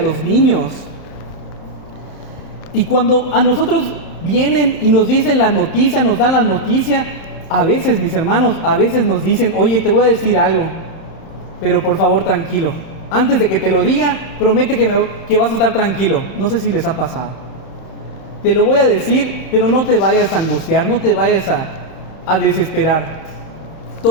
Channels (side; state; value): right; late; 31 ms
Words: niños. Y cuando a nosotros vienen y nos dicen la noticia, nos dan la noticia, a veces, mis hermanos, a veces nos dicen: oye, te voy a decir algo, pero por favor tranquilo. Antes de que te lo diga, promete que vas a estar tranquilo. No sé si les ha pasado. Te lo voy a decir, pero no te vayas a angustiar, no te vayas a desesperar.